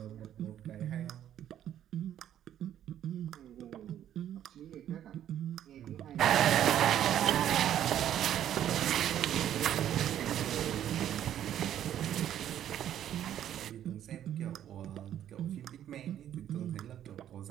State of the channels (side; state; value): left; quieter; 10.9 dB